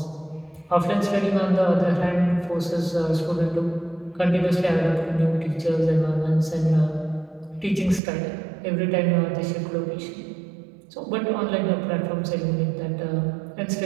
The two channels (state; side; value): drops out; left; at 8.0 s